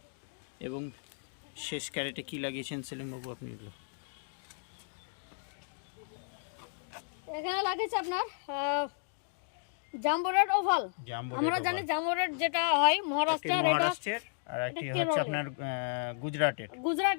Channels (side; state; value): right; silent; digital silence